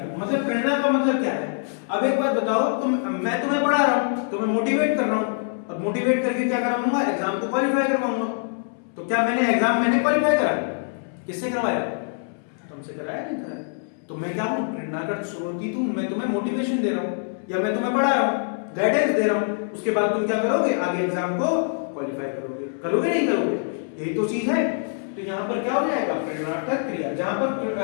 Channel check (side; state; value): right; silent; 62 dB below the other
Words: मतलब प्रेरणा का मतलब क्या है? अब एक बात बताओ, मैं तुम्हें पढ़ा रहा हूं, तुम्हें मोटिवेट कर रहा हूं। अब मोटिवेट करके क्या कराऊंगा? एग्जाम को क्वालिफाई करवाऊंगा। तो क्या मैंने क्वालिफाई कराया? किससे करवाया? तुमसे कराया? नहीं कराया। तो मैं क्या हूं? प्रेरणा का स्रोत हूं। मैं तुम्हें मोटिवेशन दे रहा हूं या मैं तुम्हें पढ़ा रहा हूं, गाइडेंस दे रहा हूं। उसके बाद तुम क्या करोगे? आगे एग्जाम को क्वालिफाई करोगे नहीं करोगे? यही तो चीज है। तो यहां पर क्या हो जाएगा? प्रेरणार्थक क्रिया। जहां पर